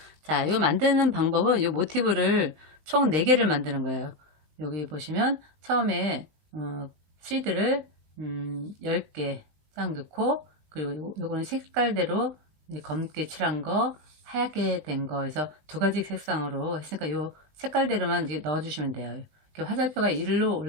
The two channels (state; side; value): late; left; 20 ms